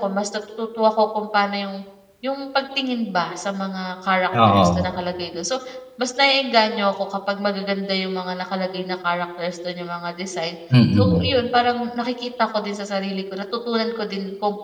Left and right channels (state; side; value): identical; both; correlation 1.00